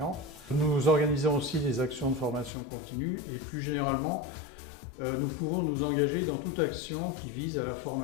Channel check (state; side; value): drops out; right; at 2.5 s